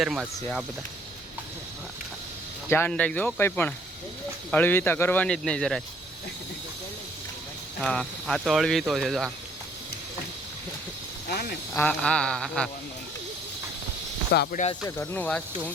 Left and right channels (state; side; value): normal; both; correlation 0.61